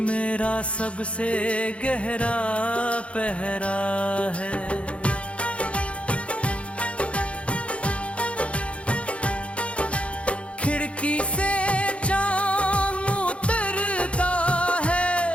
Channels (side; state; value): right; late; 0.061 ms